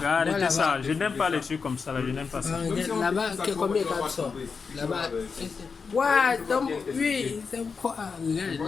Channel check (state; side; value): quieter; right; 5.3 dB